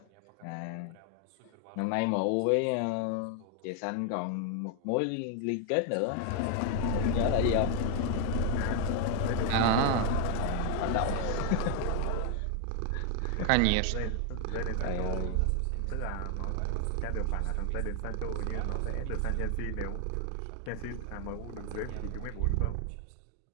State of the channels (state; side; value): different; both; correlation 0.00